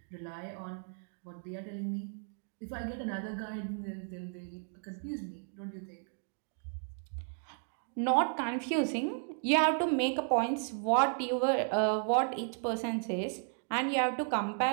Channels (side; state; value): left; silent; 55 dB below the other